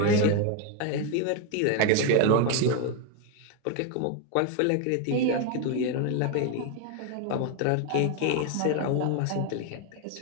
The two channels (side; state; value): both; different; correlation 0.01